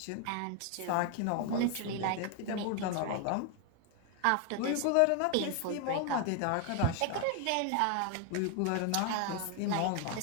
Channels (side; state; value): both; different; correlation 0.01